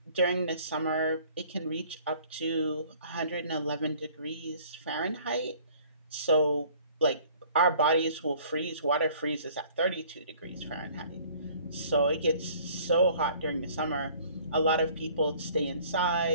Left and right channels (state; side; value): inverted; both; correlation -0.53